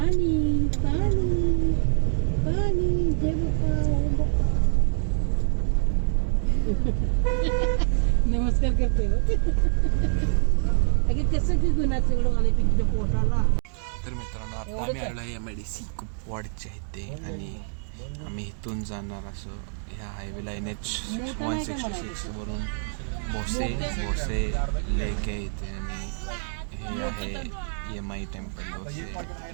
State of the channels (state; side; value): silent; left; digital silence